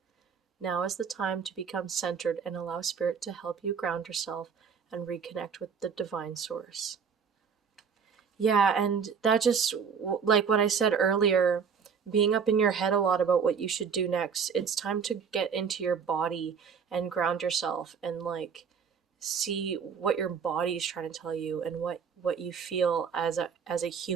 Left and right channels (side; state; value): left; quieter; 6.4 dB